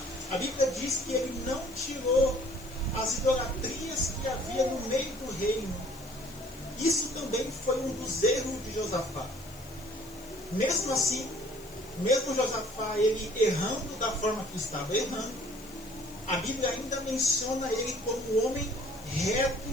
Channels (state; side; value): noise; left; hiss, 20 dB below the sound